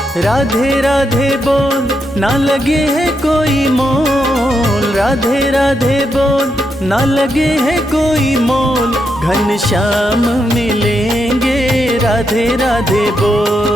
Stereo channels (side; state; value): both; normal; correlation 0.82